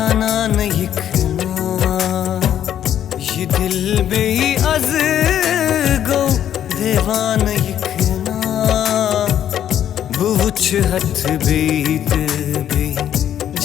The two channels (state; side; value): quieter; right; 10.4 dB